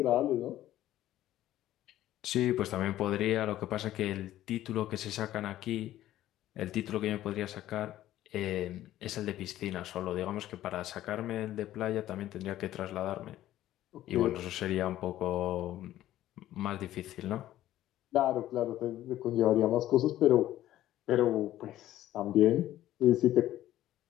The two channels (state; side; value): quieter; right; 13.7 dB